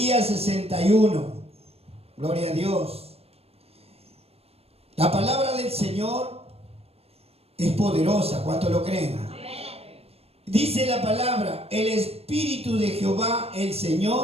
61. Gloria a Dios. La palabra del Señor es poderosa. ¿Cuántos lo creen? Dice la palabra: el Espíritu de Jehová, el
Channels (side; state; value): left; late; 0.29 ms